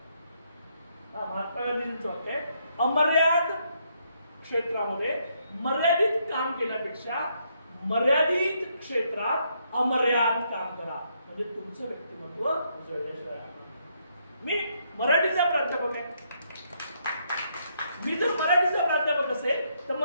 महात्मा गांधींचं वाक्य आहे, अमर्याद क्षेत्रामध्ये मर्यादित काम केल्यापेक्षा मर्यादित क्षेत्रात अमर्याद काम करा, म्हणजे तुमचं व्यक्तिमत्व उजळल्याशिवाय. मी मराठीचा प्राध्यापक आहे. मी जर मराठीचा प्राध्यापक असेल तर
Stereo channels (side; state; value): both; inverted; correlation -0.74